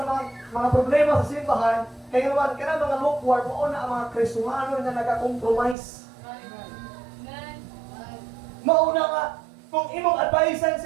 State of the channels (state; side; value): drops out; left; at 5.8 s